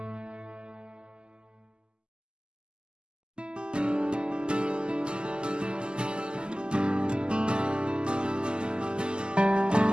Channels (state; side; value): late; left; 0.048 ms